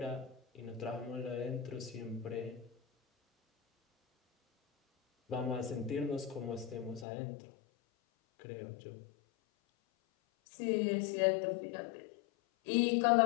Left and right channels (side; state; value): right; drops out; at 7.1 s